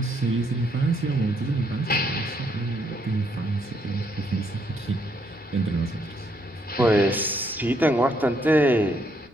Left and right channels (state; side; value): normal; both; correlation 0.72